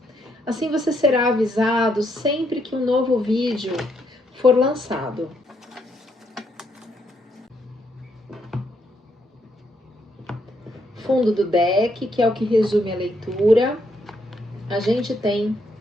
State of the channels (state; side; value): normal; both; correlation 0.75